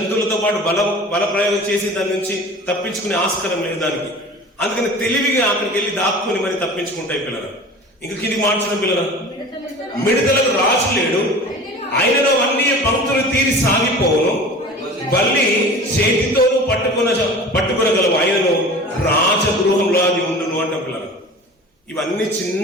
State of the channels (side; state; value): both; normal; correlation 0.39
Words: పాటు బల ప్రయోగం చేసి దాని నుంచి తప్పించుకునే ఆస్కారం లేదు దానికి. అందుకని తెలివిగా అక్కడికి వెళ్ళి దాక్కుని మరి తప్పించుకుంటాయి పిల్లలు. ఇంకా కింది మార్చిన పిల్లలు, మిడతలకు రాజు లేడు, ఆయనలో అన్ని పంక్తులు తీరి సాగిపోవును, బల్లి చేతితోనూ పట్టుకునగలవు, ఆయనను రాజగృహంలో అది ఉండును అంట పిల్లలు. ఇవన్నీ